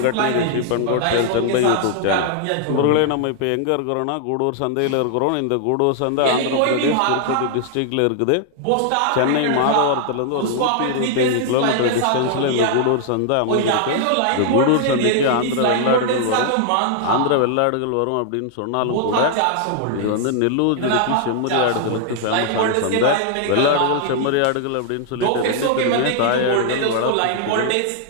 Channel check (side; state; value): both; different; correlation 0.00